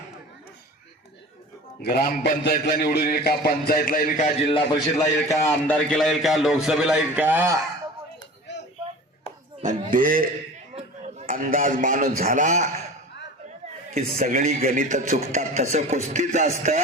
ग्रामपंचायतला निवडून येईल का, पंचायतला येईल का, जिल्हा परिषदला येईल का, आमदारकीला येईल का, लोकसभेला येईल का, ते अंदाज माणूस झाला की सगळी गणित चुकतात। तसं कुस्तीच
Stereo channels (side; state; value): both; normal; correlation 0.37